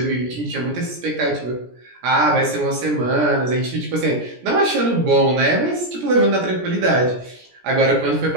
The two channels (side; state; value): left; late; 17 ms